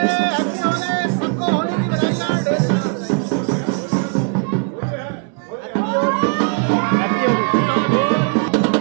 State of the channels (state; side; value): quieter; left; 38.1 dB